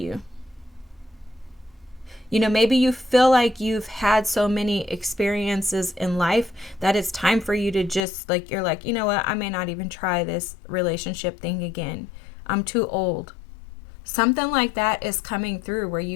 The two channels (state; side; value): drops out; right; at 8.0 s